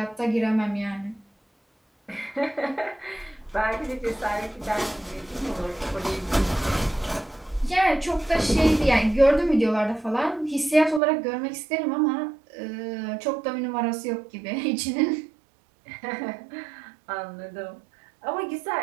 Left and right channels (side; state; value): left; drops out; at 11.0 s